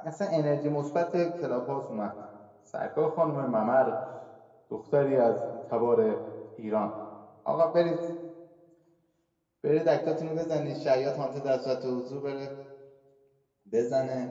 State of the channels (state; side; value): identical; both; correlation 1.00